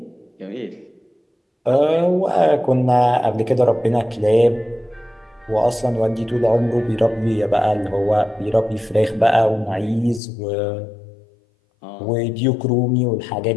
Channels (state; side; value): drops out; right; at 10.2 s